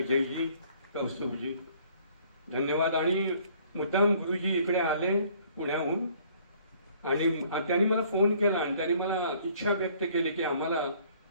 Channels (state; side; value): inverted; both; correlation -0.59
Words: कौस्तुभजी, धन्यवाद. आणि मुद्दाम गुरुजी इकडे आले पुण्याहून आणि त्यांनी मला फोन केला आणि त्यांनी मला इच्छा व्यक्त केली की आम्हाला